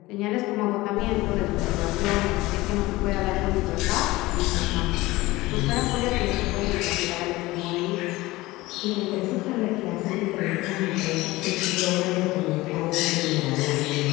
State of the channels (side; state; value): right; quieter; 19.6 dB